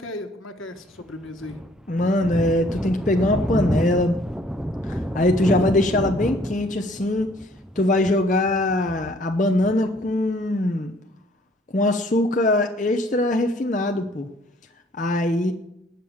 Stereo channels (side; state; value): both; normal; correlation 0.60